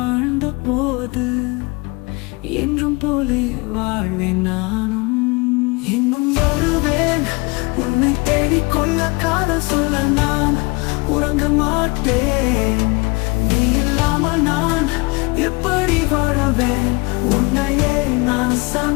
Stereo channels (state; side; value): quieter; right; 26.7 dB